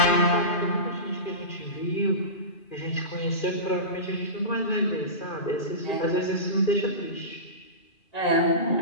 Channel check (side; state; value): right; late; 2.4 ms